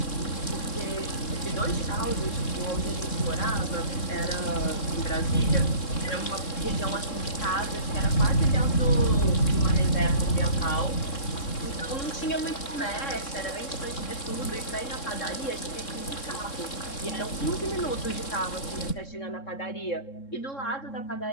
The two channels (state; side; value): late; right; 3.7 ms